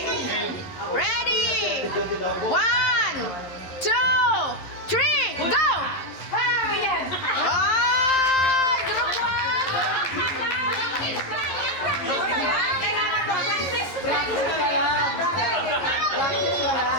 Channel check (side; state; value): right; late; 11 ms